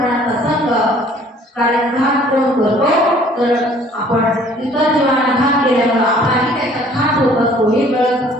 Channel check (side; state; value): both; normal; correlation 0.55